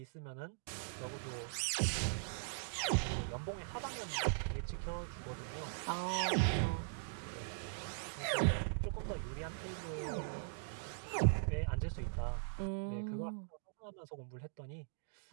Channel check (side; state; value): left; silent; digital silence